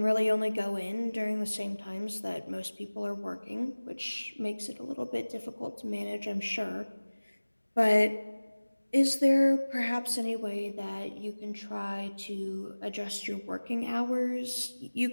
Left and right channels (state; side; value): inverted; both; correlation -1.00